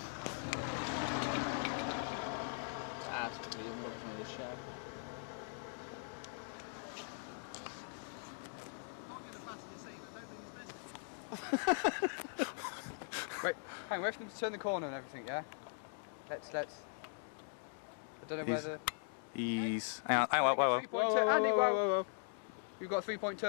That's pretty good. Look from the show. Wait, hang on, wait for them to turn the corner and everything, yeah? Let's. I don't know whether. Ease. Hang on, whoa. Whoa. We've got a 3-point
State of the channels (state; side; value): silent; right; digital silence